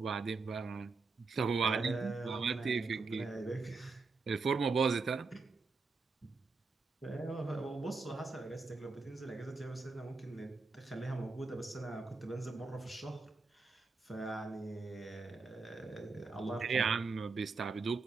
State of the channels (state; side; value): quieter; left; 4.1 dB